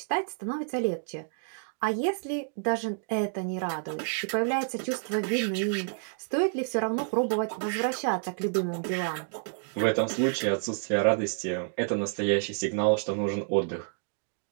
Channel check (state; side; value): silent; left; 58 dB below the other